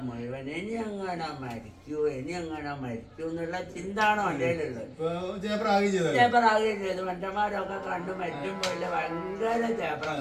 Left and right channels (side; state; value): both; identical; correlation 1.00